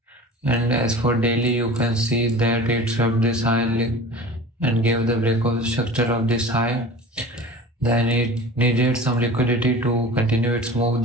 And as for daily, you can see that it swept this high and gave the breakout structure of this high. Then it needed some liquidity to continue its move.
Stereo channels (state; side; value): normal; both; correlation 0.38